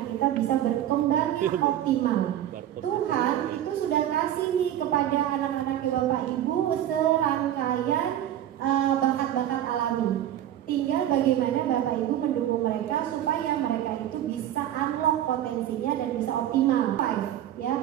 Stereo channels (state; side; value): quieter; left; 11.7 dB